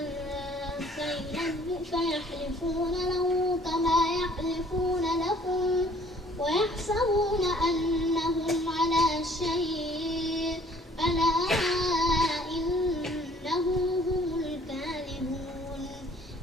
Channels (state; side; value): normal; both; correlation 0.57